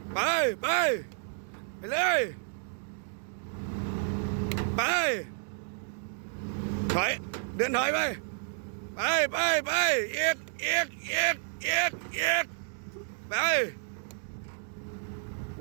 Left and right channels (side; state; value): left; silent; digital silence